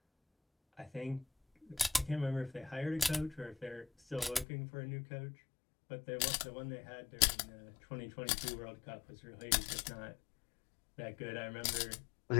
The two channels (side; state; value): right; drops out; at 4.5 s